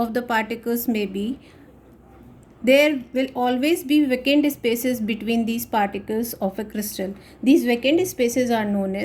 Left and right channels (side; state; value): both; identical; correlation 1.00